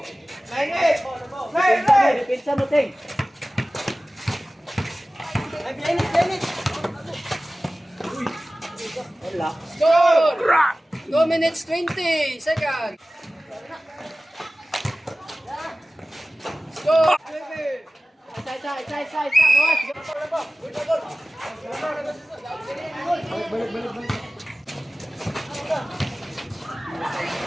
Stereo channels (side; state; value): both; normal; correlation 0.96